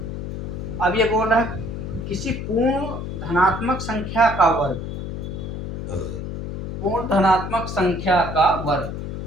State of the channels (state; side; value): noise; left; hum, 6 dB below the sound